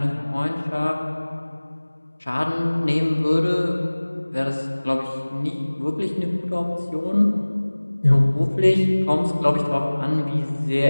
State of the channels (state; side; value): inverted; both; correlation -1.00